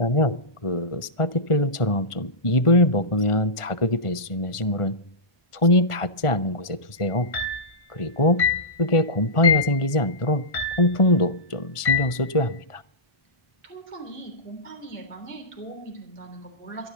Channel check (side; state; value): right; late; 1.4 ms